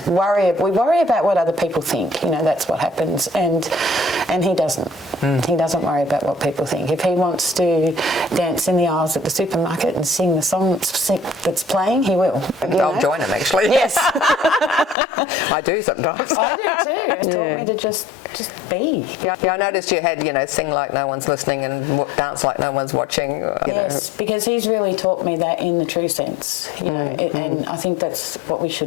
worry about what other people think. You know, that's what happens. And he doesn't. He doesn't worry about what people think. If he wants to dance in the aisles at the supermarket and sing the song that's playing, he will. I'll join him, actually. Yes. I I do sometimes. I do too. It taught me to just be. Yeah, I noticed you had, sing like no one's listening and dance like no one's watching. Yes, because he's really taught me that in the true sense, and I think that's what we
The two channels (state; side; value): drops out; right; at 15.0 s